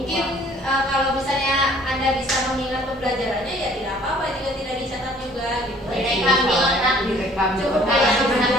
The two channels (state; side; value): normal; both; correlation 0.55